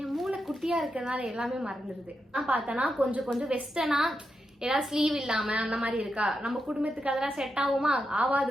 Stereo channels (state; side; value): normal; both; correlation 0.86